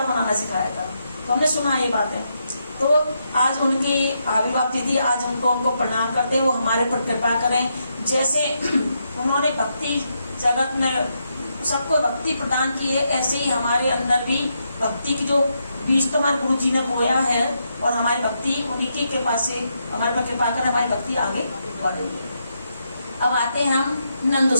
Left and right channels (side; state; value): both; inverted; correlation -0.81